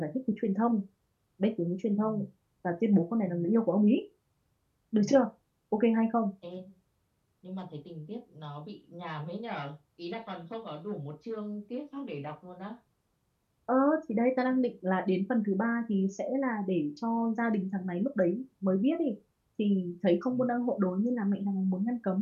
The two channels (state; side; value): identical; both; correlation 1.00